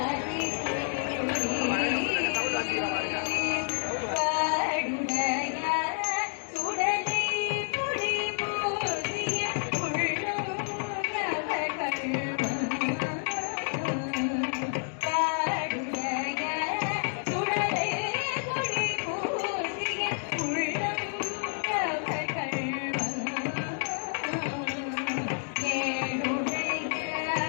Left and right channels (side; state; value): right; silent; 55 dB below the other